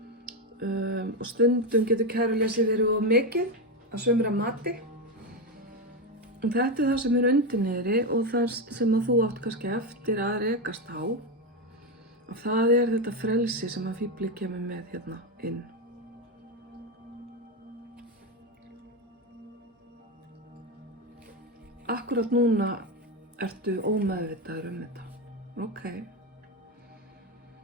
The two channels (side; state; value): both; normal; correlation 0.11